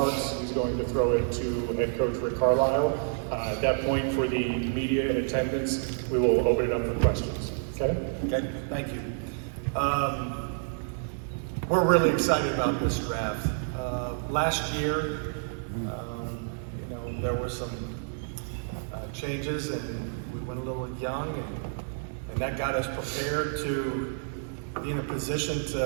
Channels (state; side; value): silent; left; digital silence